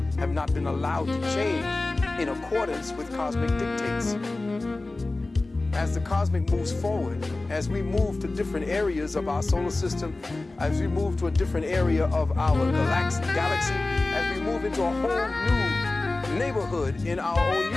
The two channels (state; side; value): quieter; right; 3.1 dB